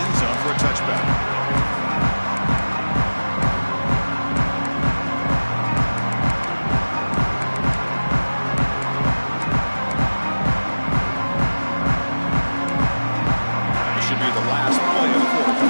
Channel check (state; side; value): inverted; both; correlation -1.00